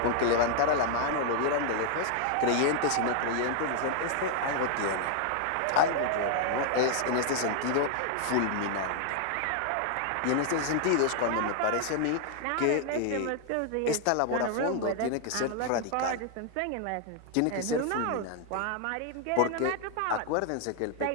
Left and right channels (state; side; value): different; both; correlation 0.00